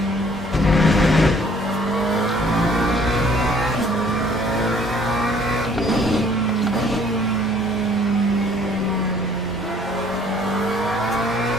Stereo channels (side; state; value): both; normal; correlation 0.58